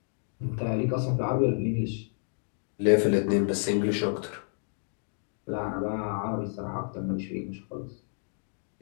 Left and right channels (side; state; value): right; silent; digital silence